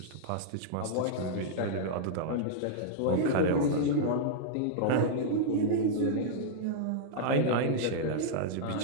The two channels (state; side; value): different; both; correlation -0.02